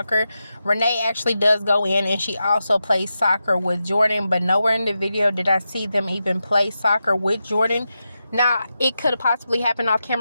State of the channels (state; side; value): inverted; both; correlation -0.90